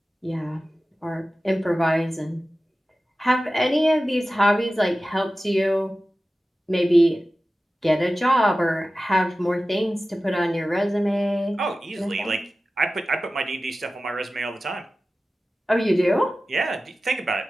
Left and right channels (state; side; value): normal; both; correlation 0.95